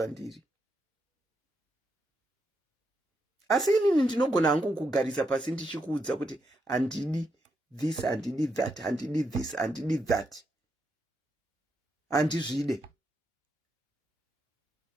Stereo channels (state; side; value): normal; both; correlation 0.82